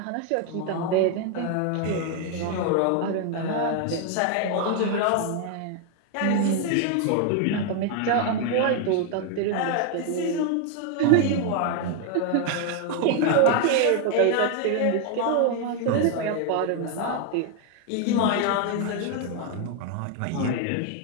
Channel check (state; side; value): different; both; correlation 0.01